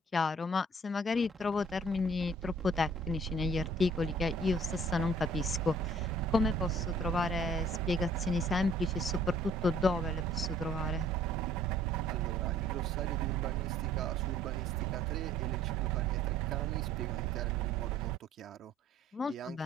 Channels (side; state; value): both; normal; correlation 0.56